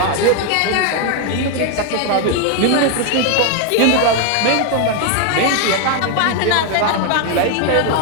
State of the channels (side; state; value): both; different; correlation 0.01